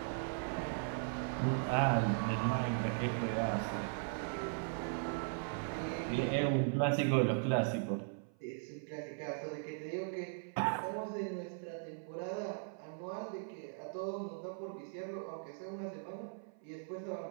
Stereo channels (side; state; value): left; silent; 52 dB below the other